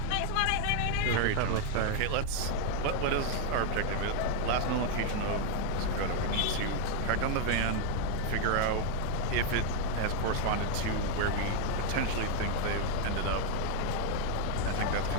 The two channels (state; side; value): different; both; correlation 0.00